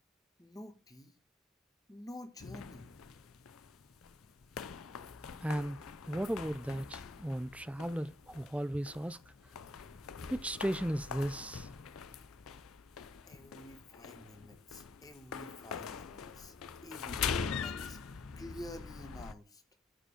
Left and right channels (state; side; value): normal; both; correlation 0.75